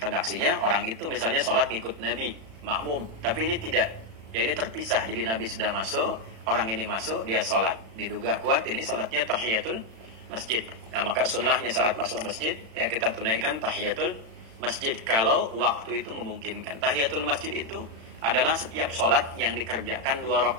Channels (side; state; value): left; late; 36 ms